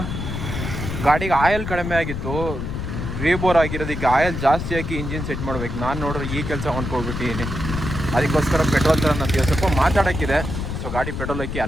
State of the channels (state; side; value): noise; left; rumble, 4 dB below the sound